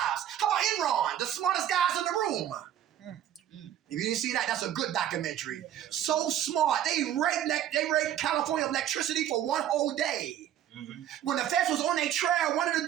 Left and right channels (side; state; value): left; quieter; 11.0 dB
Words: How about Enron, the smartest guys in the room? If you didn't see that, that's a good documentary. So smart. They raped California electricity for one whole day. When the feds was on their trail, one of the